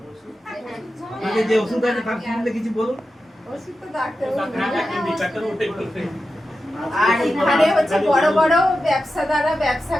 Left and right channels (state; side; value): normal; both; correlation 0.91